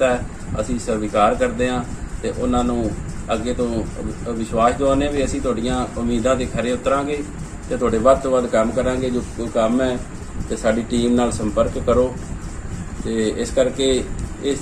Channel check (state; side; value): identical; both; correlation 1.00